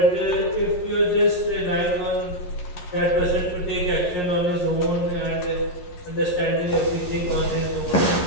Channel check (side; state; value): right; late; 11 ms